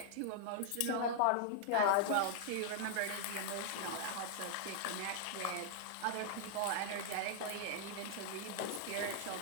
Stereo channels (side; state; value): both; different; correlation -0.01